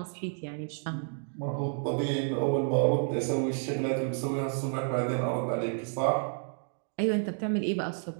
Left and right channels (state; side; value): silent; left; 58 dB below the other